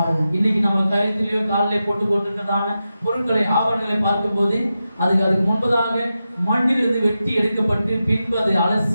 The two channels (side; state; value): both; inverted; correlation -0.91